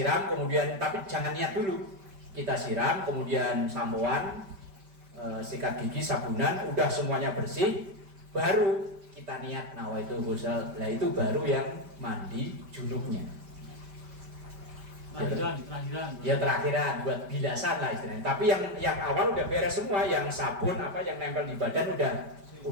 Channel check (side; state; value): left; late; 5.1 ms